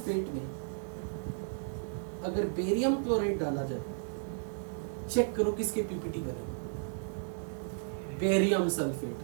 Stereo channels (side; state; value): left; silent; digital silence